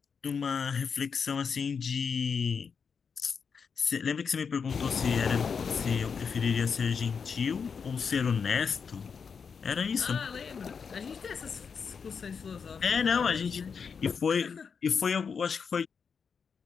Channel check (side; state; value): right; quieter; 6.1 dB